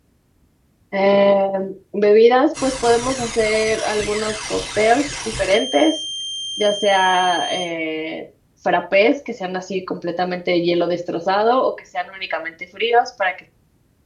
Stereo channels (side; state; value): both; identical; correlation 1.00